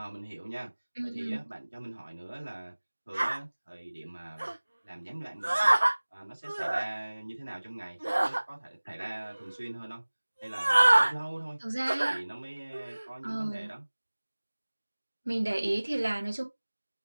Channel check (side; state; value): both; inverted; correlation -1.00